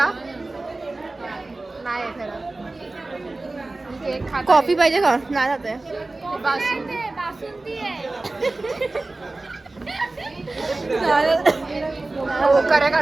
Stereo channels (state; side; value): quieter; left; 3.1 dB